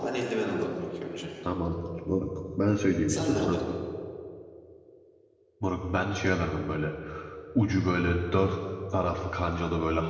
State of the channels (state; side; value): identical; both; correlation 1.00